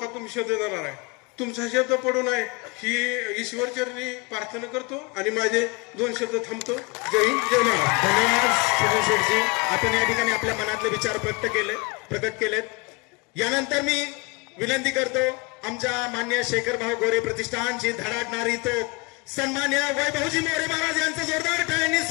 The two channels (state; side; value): quieter; right; 26.6 dB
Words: तुम्ही शब्द देणार आहे. तुमचा शब्द पडू नये ही ईश्वरचरणी प्रार्थना करतो आणि माझे 2 शब्द थांबतो. जय हिंद, जय महाराष्ट्र. धन्यवाद सुनील शेठजी. आपण या ठिकाणी आपल्या मनातले विचार प्रकट केलेत. यानंतर मी विनंती करतो आमच्या मान्य शेखर भाऊ गोरे प्रतिष्ठानची धडाडणारी तो सन्मान्य वैभवजी मोरे महाराज यांचं जोरदार टाळ्यांनी